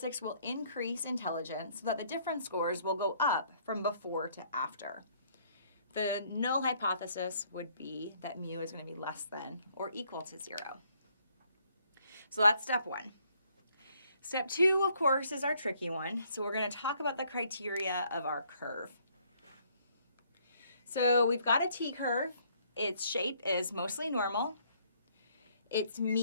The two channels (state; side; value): inverted; both; correlation -0.66